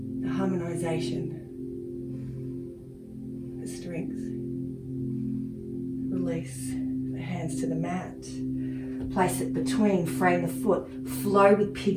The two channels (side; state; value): both; identical; correlation 1.00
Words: the harmonization, the strength. Release the hands to the mat. Place it between, frame the foot, flow with